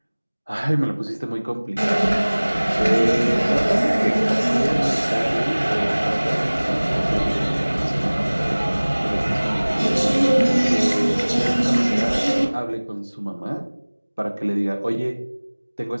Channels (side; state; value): both; inverted; correlation -1.00